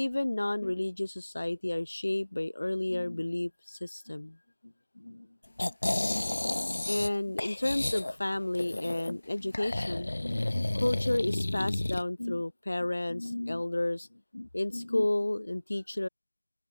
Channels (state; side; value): inverted; both; correlation -1.00